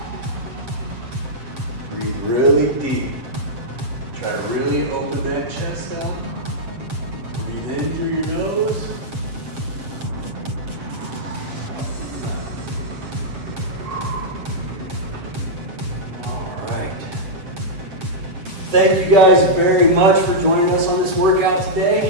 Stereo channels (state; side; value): late; left; 7.5 ms